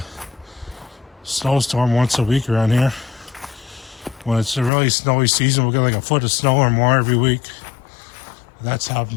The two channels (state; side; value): drops out; right; at 4.7 s